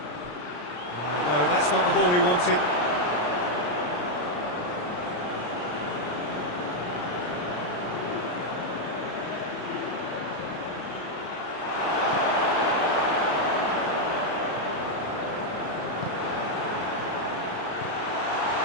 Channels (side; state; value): right; late; 34 ms